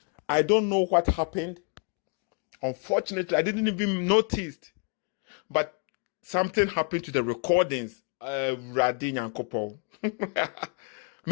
I don't know what happened. Unfortunately, I didn't even notice. But something happened to the recordings. Radin and Kopo.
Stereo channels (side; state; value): right; quieter; 38.4 dB